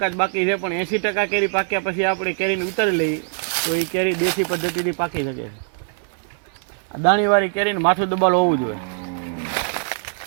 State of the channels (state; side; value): silent; left; digital silence